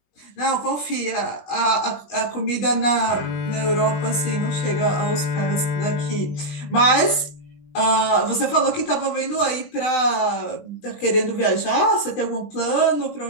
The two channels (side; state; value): right; late; 20 ms